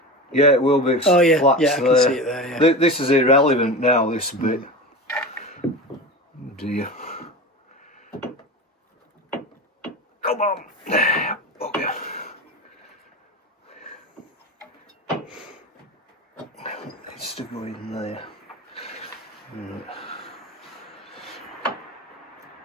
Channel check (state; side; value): normal; both; correlation 0.27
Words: Yeah, it will be. Oh yeah, Flats yeah, I can there. see it there. Yeah. This is irrelevant now. This bit. Oh dear. Come on. Okay. It's to go in there. Right.